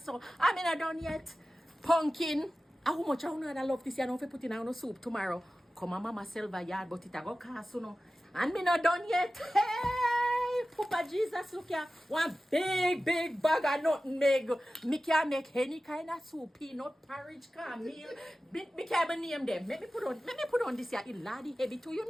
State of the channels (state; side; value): normal; both; correlation 0.95